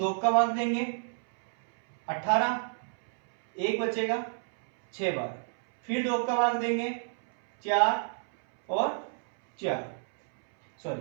का भाग देंगे 18, 1 बचेगा 6 बार। फिर 2 का भाग देंगे 4 और 4,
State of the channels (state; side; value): silent; left; 59 dB below the other